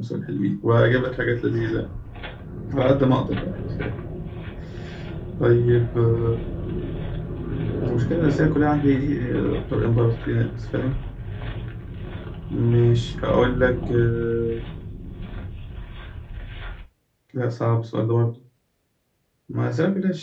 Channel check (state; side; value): identical; both; correlation 1.00